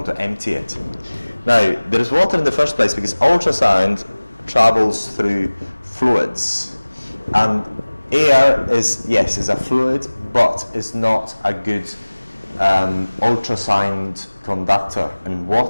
to empty it? Now, there is water in the first place because ultrasound travels through fluids, and air is a fluid, but is not a good ultrasound conductor, and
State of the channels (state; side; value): inverted; both; correlation -1.00